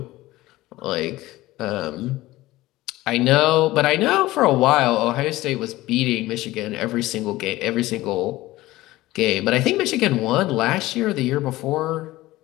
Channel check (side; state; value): right; quieter; 17.7 dB